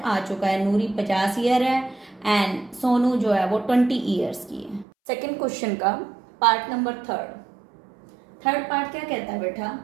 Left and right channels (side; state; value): left; drops out; at 4.9 s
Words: चुका है, नूरी 50 ईयर है एंड सोनू जो है वो 20 ईयर्स की है। सेकेंड क्वेश्चन का पार्ट नंबर थर्ड पार्ट क्या कहता है बेटा,